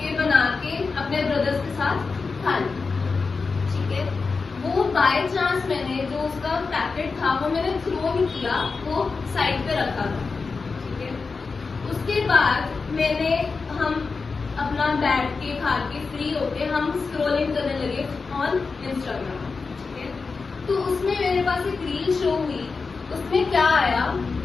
बना के अपने ब्रदर्स के साथ खा ली, ठीक है। वो बाय चांस मैंने जो उसका पैकेट था वो मैंने थ्रो नहीं किया, वो साइड पे रखा था, ठीक है। उसके बाद हम अपना बैठ के खा के फ्री होके हम स्क्रॉलिंग करने लगे ऑन इंस्टाग्राम, ठीक है। तो उसमें मेरे पास एक रील शो हुई, उसमें क्या आया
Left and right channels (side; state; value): right; quieter; 4.5 dB